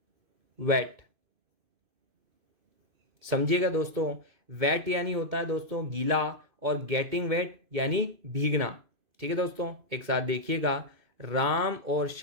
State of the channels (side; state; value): left; late; 2.6 ms